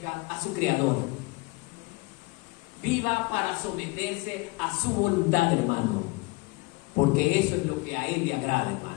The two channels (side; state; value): right; quieter; 24.7 dB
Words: a su Creador. viva para someterse a su voluntad, hermano. Porque eso es lo que a Él le agrada,